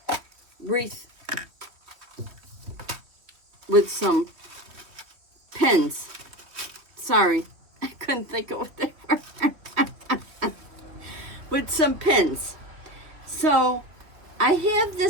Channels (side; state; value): left; late; 2.9 ms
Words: wreath with some pins. Sorry, I couldn't think of what they were. With some pins. So I have